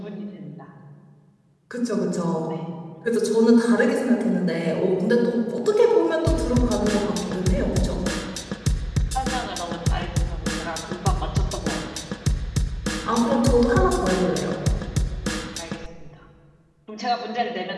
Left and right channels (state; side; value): identical; both; correlation 1.00